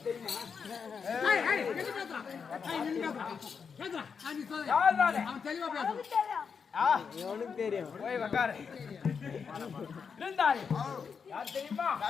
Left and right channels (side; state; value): right; quieter; 6.1 dB